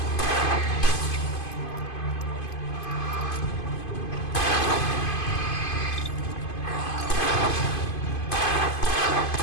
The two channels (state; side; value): late; right; 2.5 ms